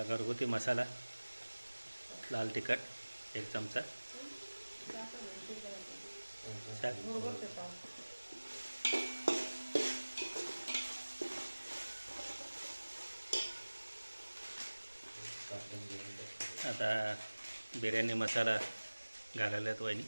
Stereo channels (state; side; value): inverted; both; correlation -1.00